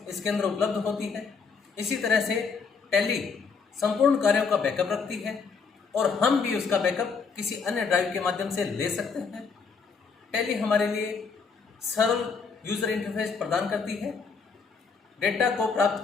इसके अंदर उपलब्ध होती है। इसी तरह से टैली संपूर्ण कार्यों का बैकअप रखती है और हम भी उसका बैकअप किसी अन्य ड्राइव के माध्यम से ले सकते हैं। टैली हमारे लिए सरल यूजर इंटरफेस प्रदान करती है। डेटा को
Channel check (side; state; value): right; quieter; 5.2 dB